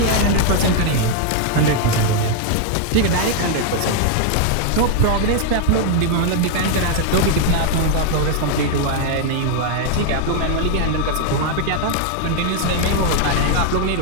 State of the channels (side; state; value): both; different; correlation 0.00